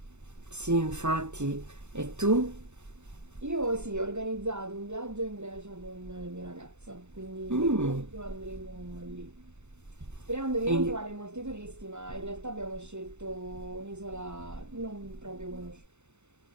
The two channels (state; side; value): late; left; 0.82 ms